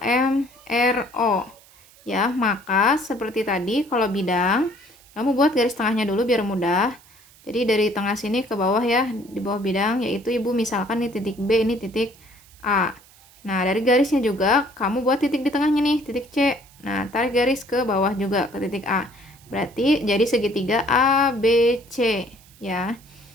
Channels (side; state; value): right; noise; hiss, 26 dB below the sound